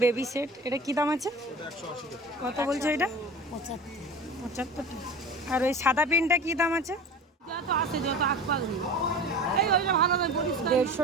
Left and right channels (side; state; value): both; normal; correlation 0.35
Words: baby set. এটা কি দাম আছে? কত বলছো এটা? 75 টাকা। আর ওই সাদা পেনটা কি দাম আছে? 150